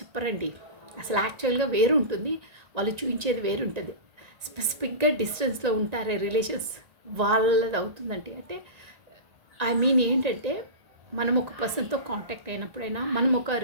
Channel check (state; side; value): late; left; 1.9 ms